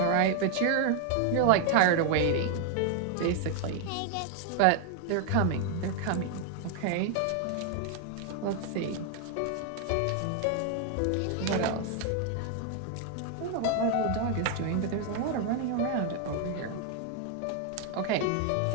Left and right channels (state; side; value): different; both; correlation 0.00